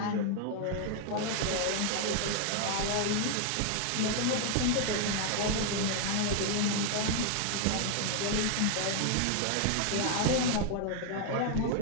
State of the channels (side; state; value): both; different; correlation 0.00